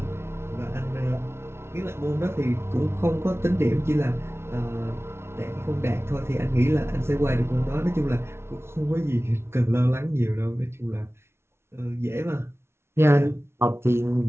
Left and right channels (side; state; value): left; late; 0.12 ms